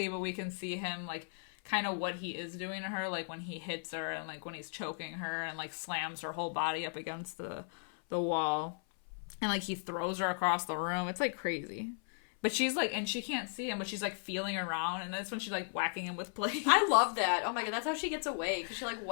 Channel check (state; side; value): silent; right; 54 dB below the other